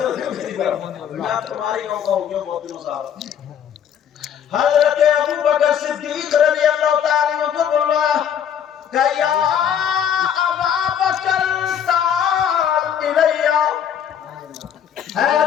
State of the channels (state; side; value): quieter; right; 8.8 dB